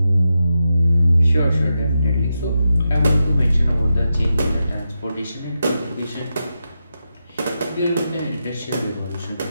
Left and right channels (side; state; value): both; inverted; correlation -0.88